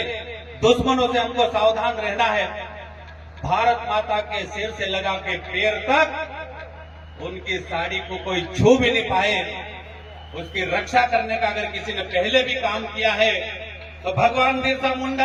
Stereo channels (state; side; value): identical; both; correlation 1.00